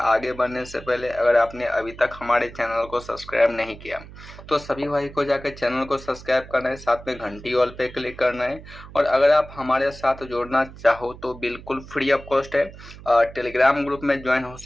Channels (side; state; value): right; noise; hum, 17 dB below the sound